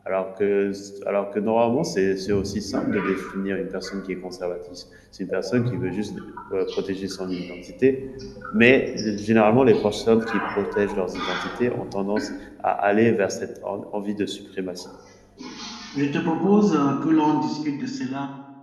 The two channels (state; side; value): identical; both; correlation 1.00